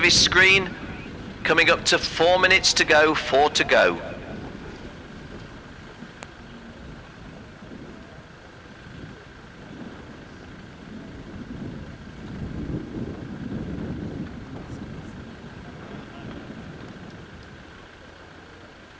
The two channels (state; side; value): identical; both; correlation 1.00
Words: screen coming up to 4 minutes to go, 4 to go.